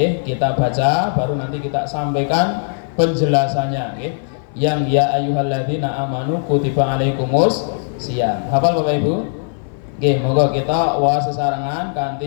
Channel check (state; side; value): silent; right; 57 dB below the other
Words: kita baca baru nanti kita sampaikan penjelasannya nggih. Yang ya ayyuhalladzina amanu kutiba alaikumus shiyam. Hafal Bapak Ibu? Nggih, monggo kita wasesarengan